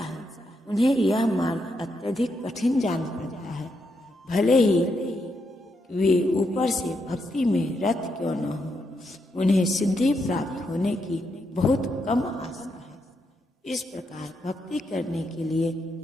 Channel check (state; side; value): normal; both; correlation 0.81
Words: उन्हें यह मार्ग अत्यधिक कठिन जान पड़ता है। भले ही वे ऊपर से भक्ति में रत क्यों न हो, उन्हें सिद्धि प्राप्त होने की बहुत कम आशा है। इस प्रकार भक्ति करने के लिए